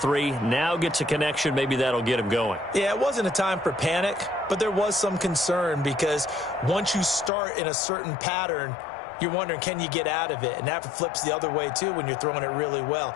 Now gets a connection. Maybe that'll get him going. Yeah, it wasn't a time for panic, but there was some concern because once you start in a certain pattern, you're wondering, can you get out of it? And that flips the other way, too, when you're throwing it really well.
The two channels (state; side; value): drops out; right; at 7.3 s